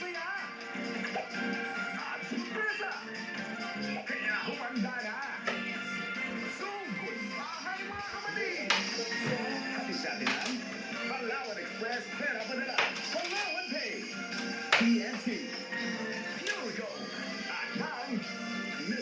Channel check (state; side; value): identical; both; correlation 1.00